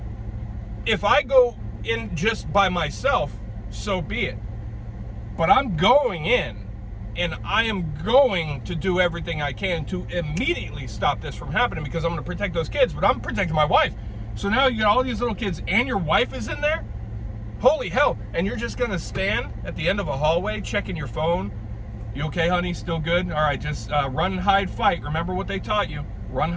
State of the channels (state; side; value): identical; both; correlation 1.00